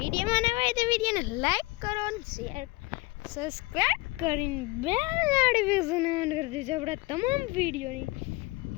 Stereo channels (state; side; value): quieter; right; 22.8 dB